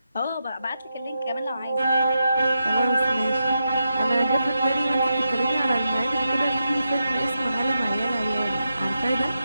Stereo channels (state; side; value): inverted; both; correlation -0.86